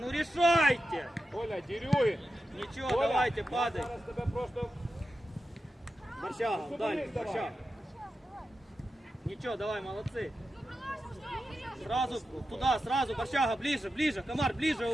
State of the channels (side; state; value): both; normal; correlation 0.90